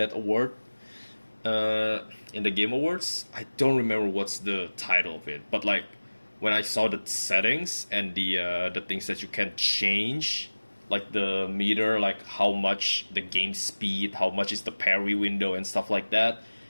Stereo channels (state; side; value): inverted; both; correlation -1.00